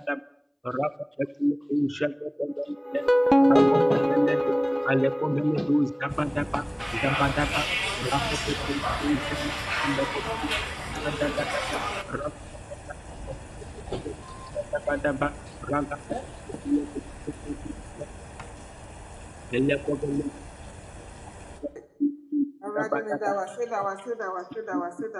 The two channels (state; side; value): identical; both; correlation 1.00